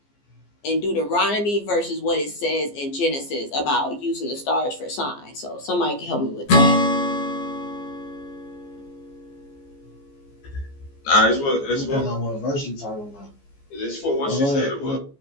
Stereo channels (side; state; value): right; late; 14 ms